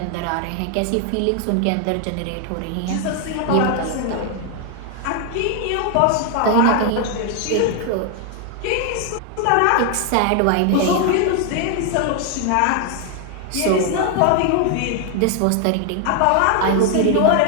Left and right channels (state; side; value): different; both; correlation 0.00